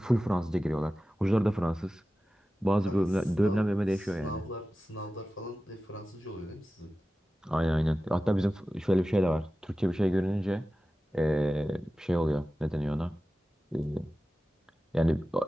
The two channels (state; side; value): normal; both; correlation 0.95